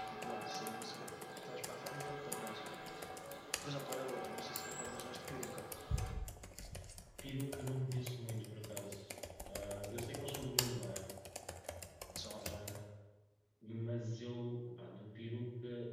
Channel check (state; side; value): identical; both; correlation 1.00